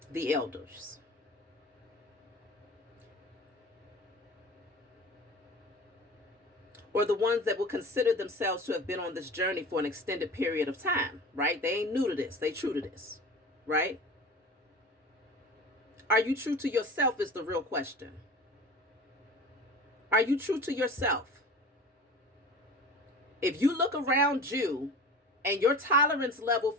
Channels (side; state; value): both; normal; correlation 0.37